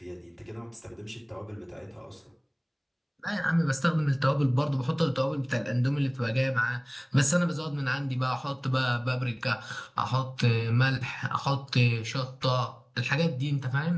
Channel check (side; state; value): both; identical; correlation 1.00